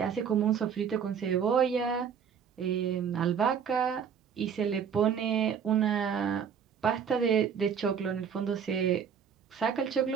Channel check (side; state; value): left; quieter; 7.3 dB